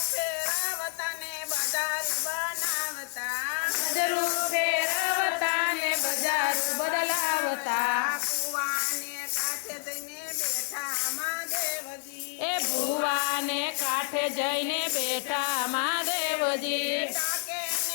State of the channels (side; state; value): right; silent; 59 dB below the other